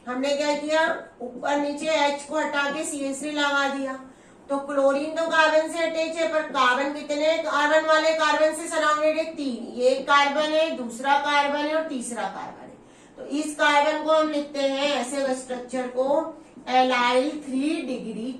हमने क्या किया, ऊपर नीचे H को हटा के CH3 लगा दिया। तो क्लोरीन तो कार्बन से अटैच है, पर कार्बन कितने कार्बन वाले कार्बन से सराउंडेड है, 3। ये एक कार्बन है, दूसरा कार्बन है और तीसरा कार्बन है। तो इस कार्बन को हम लिखते हैं ऐसे स्ट्रक्चर को एलाइल 3 डिग्री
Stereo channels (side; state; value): both; identical; correlation 1.00